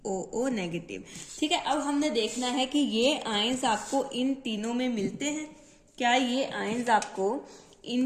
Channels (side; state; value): both; identical; correlation 1.00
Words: negative, ठीक है। अब हमने देखना है कि ये आयंस आपको इन तीनों में मिलते हैं, क्या ये आयंस आपको